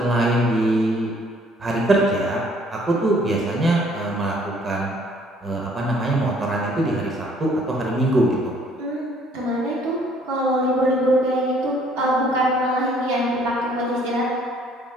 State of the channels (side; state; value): both; normal; correlation 0.61